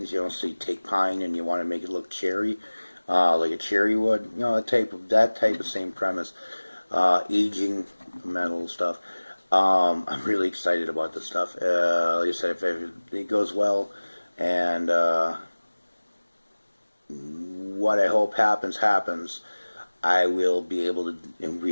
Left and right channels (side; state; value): both; inverted; correlation -1.00